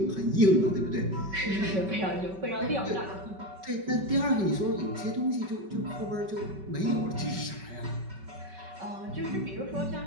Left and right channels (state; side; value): late; left; 5.3 ms